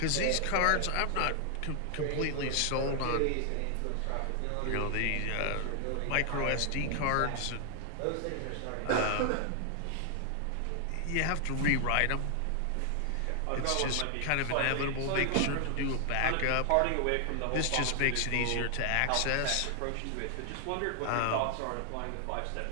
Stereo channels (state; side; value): different; both; correlation 0.00